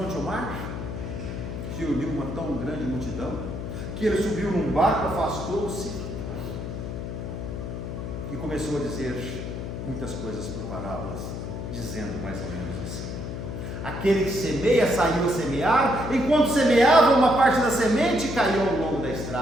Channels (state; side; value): noise; left; hum, 6 dB below the sound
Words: ao mar, se uniu uma tão grande multidão, que ele subiu num barco, afastou-se e começou a dizer muitas coisas por parábolas, dizendo mais ou menos assim: aquele que semeia saiu a semear, enquanto semeava, uma parte da semente caiu ao longo da